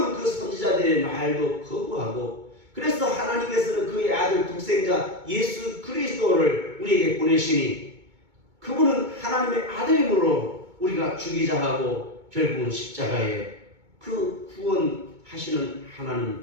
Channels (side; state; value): left; late; 2.2 ms